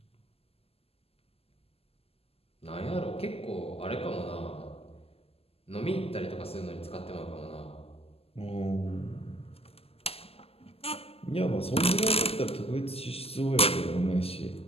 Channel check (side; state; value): right; late; 0.29 ms